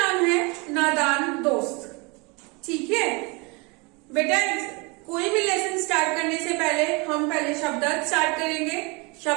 है नादान दोस्त। ठीक है बेटा, कोई भी लेसन स्टार्ट करने से पहले हम पहले शब्दार्थ स्टार्ट करेंगे,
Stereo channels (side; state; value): left; quieter; 28.7 dB